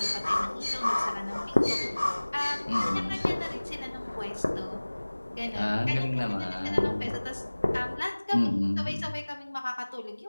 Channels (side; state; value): both; inverted; correlation -1.00